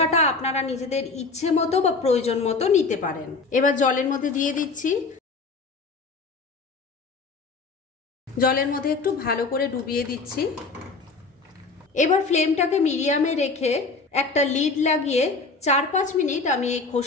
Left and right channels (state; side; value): quieter; right; 4.1 dB